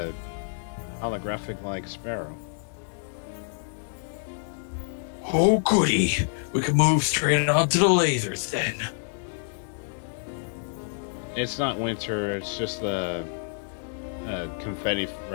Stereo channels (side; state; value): right; silent; digital silence